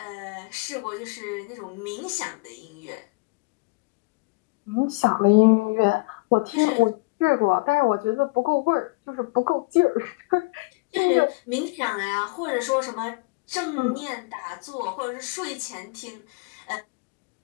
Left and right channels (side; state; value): right; quieter; 26.8 dB